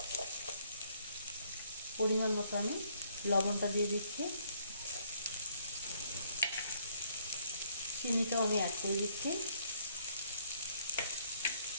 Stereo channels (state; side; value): inverted; both; correlation -0.66